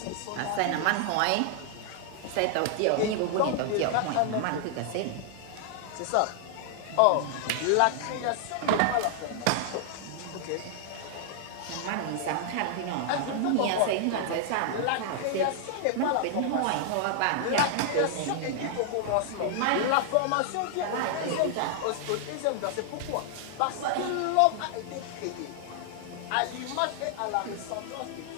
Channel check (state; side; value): different; both; correlation -0.01